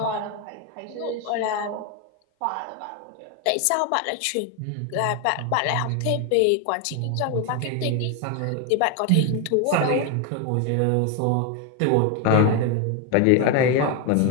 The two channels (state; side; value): different; both; correlation 0.01